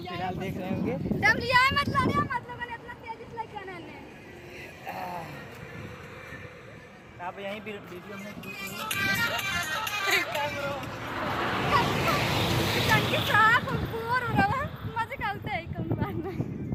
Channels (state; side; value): identical; both; correlation 1.00